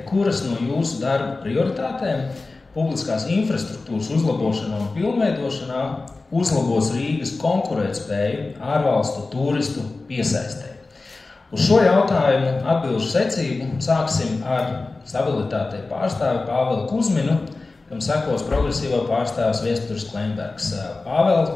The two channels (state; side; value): quieter; right; 3.5 dB